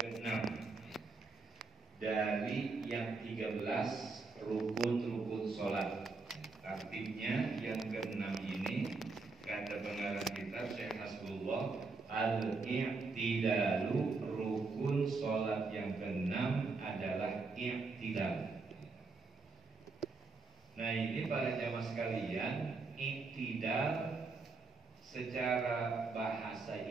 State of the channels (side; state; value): left; quieter; 4.0 dB